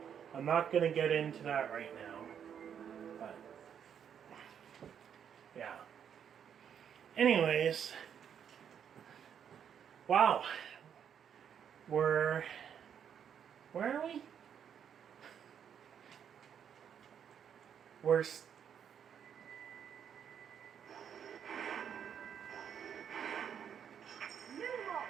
going to get into that right now. But yeah. Anyways, wow. Where are we?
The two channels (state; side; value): quieter; left; 8.3 dB